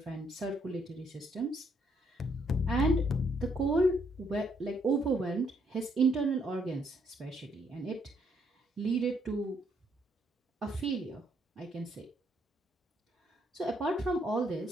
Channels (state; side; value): normal; both; correlation 0.72